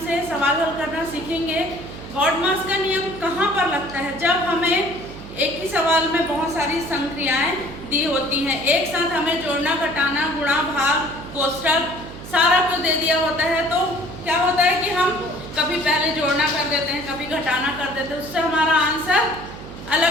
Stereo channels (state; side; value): noise; right; hum, 13 dB below the sound